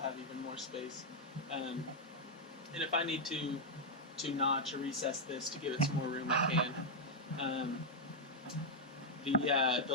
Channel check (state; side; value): normal; both; correlation -0.02